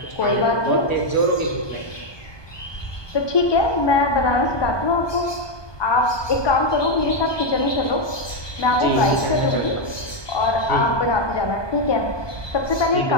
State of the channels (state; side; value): late; right; 1.2 ms